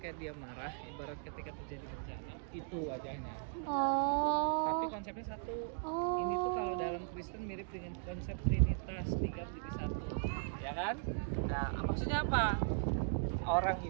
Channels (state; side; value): silent; left; digital silence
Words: dia marah, ibarat ketika terjadi bencana, itu wajahnya. Tapi Oh. konsepnya satu. Oh. Ini tuh kalau dalam Kristen mirip dengan konsep Trinitas, 3 menjadi 1. Ya kan? Nah, maksudnya apa? Orang